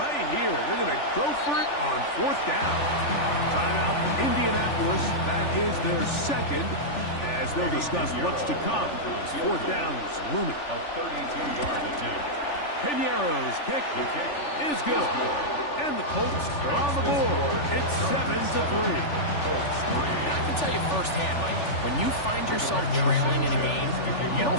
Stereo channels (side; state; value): right; late; 3.4 ms